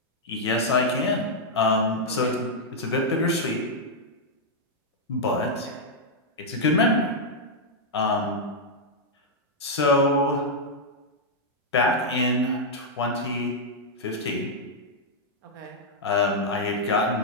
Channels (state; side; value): normal; both; correlation -0.05